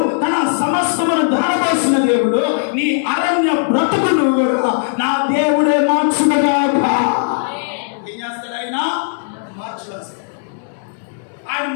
తన సమస్తమును ధారపోసిన దేవుడు, నీ అరణ్య బ్రతుకును కూడా నా దేవుడే మార్చుగాక. ఏం చేస్తాడు ఆయన? మార్చుకొస్తాడు. ఆయన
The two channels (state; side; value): silent; right; digital silence